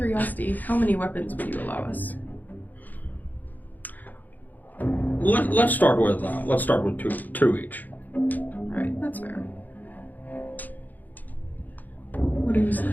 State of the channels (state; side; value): late; right; 0.083 ms